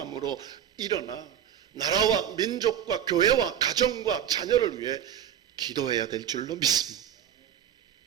일어나 나라와 민족과 교회와 가정과 자녀를 위해 기도해야 될 줄로 믿습니다.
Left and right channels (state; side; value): quieter; left; 9.6 dB